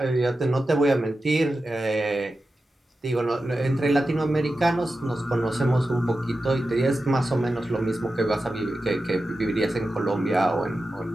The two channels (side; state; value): both; normal; correlation 0.92